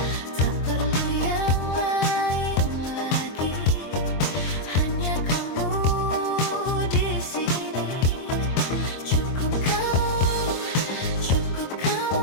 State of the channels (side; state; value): right; late; 23 ms